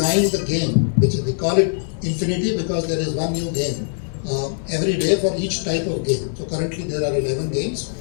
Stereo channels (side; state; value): right; silent; digital silence